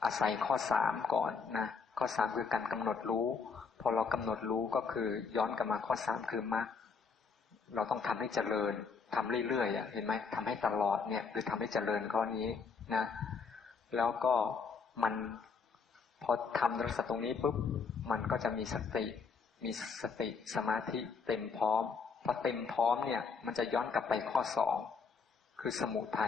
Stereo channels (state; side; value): quieter; right; 5.3 dB